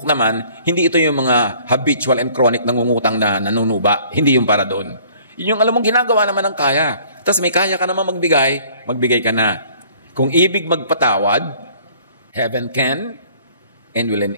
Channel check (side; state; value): both; inverted; correlation -0.55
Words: naman, hindi ito yung mga habitual and chronic nangungutang na nanunuba. Hindi yung para doon. Yun yung alam mong ginagawa naman ng kaya. Tapos may kaya ka naman magbigay ka na. Kung ibig magpatawad, heaven can and will